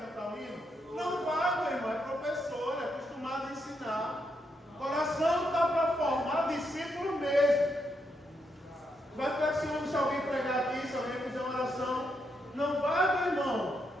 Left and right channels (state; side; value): normal; both; correlation 0.80